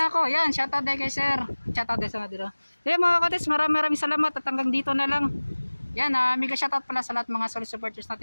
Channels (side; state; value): both; inverted; correlation -1.00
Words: ako. Yan, shoutout day kay sir. Shoutout day sa mga dito. Yan mga cottage, maraming salamat at hanggang dito na lang. Yan, mega shoutout pala sa lahat mga solid supporters